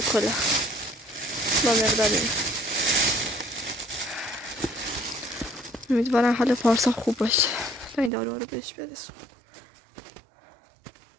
کلاه با مقدار این. امیدوارم حال پارسا خوب باشه تا این دارو رو بهش برسون.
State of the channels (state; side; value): drops out; left; at 8.1 s